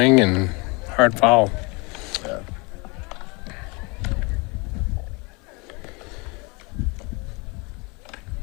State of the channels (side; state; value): right; quieter; 28.4 dB